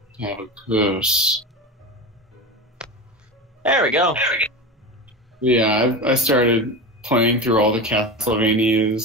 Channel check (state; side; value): normal; both; correlation 0.25